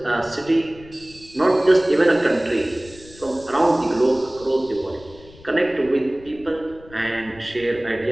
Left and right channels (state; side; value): noise; left; rumble, 22 dB below the sound